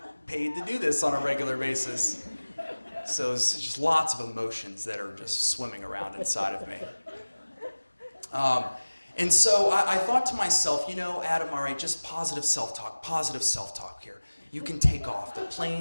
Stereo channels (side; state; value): both; inverted; correlation -1.00